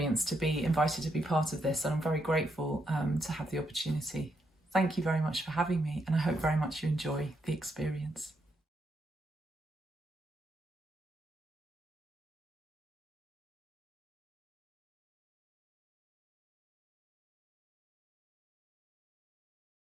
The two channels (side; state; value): both; normal; correlation 0.79